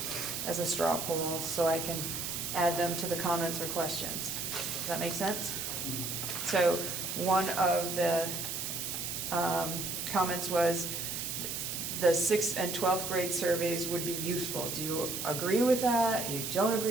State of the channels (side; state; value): right; noise; hiss, 4 dB below the sound